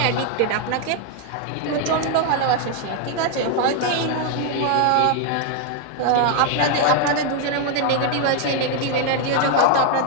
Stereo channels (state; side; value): different; both; correlation 0.01